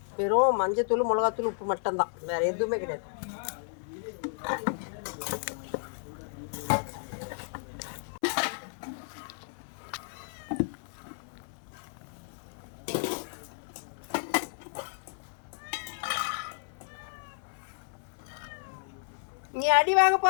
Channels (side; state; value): right; silent; 56 dB below the other